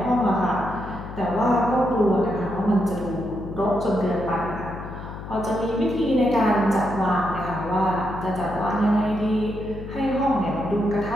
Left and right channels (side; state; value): left; noise; hum, 10 dB below the sound